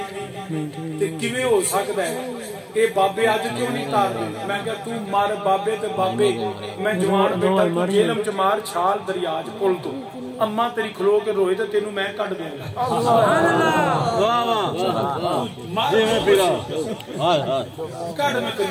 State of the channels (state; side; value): identical; both; correlation 1.00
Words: تے کیویں ہو سکدا ہے اے بابے اج کیوں نہیں تارتے میں کہ تو مار بابے تے بابے میں جوان بیٹا تو جیلم چ مار چھال دریا چ پل تو اما تیری کھلو کے روئے تے تینوں میں کڈ دوں گا سبحان اللہ واہ واہ جی میں پھرا ہائے ہائے کڈ میں